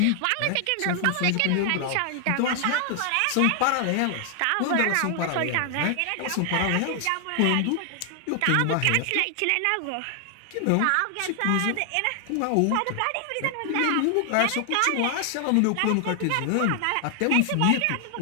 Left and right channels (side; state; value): both; different; correlation 0.00